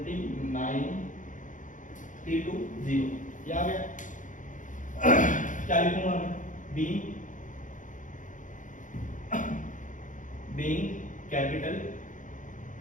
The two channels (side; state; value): right; late; 0.37 ms